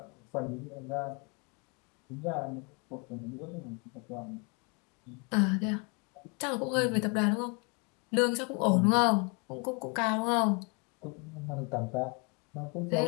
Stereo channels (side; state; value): right; quieter; 33.5 dB